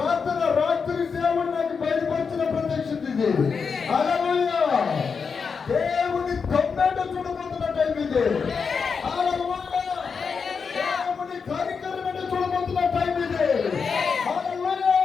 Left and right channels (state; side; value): quieter; right; 5.6 dB